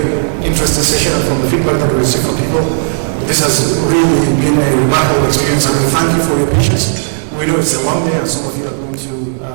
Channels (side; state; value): left; silent; digital silence